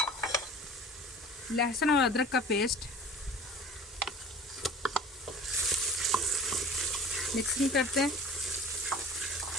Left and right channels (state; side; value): normal; both; correlation 0.43